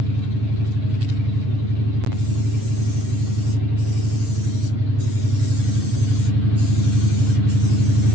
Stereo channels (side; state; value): left; late; 9.0 ms